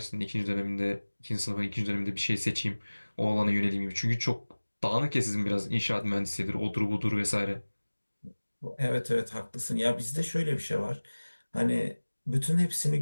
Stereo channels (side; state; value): both; inverted; correlation -1.00